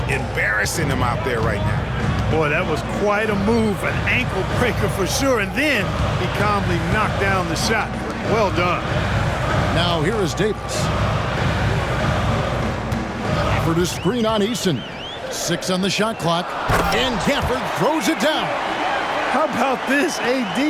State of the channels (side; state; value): both; identical; correlation 1.00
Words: embarrassing them out there right now. Boy, that was quite a move, an ankle breaker for sure. And then he calmly knocked down the shot. Well done. Now here is Davis. For the screen on Eason. 6 on the shot clock. And Gafford throws it down. How about this?